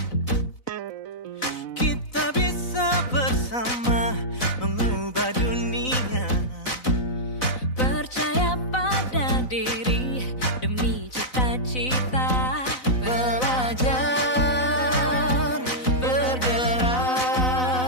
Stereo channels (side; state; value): right; late; 4.0 ms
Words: Bersama mengubah dunia, percaya pada diri demi cita-cita, belajar, bergerak,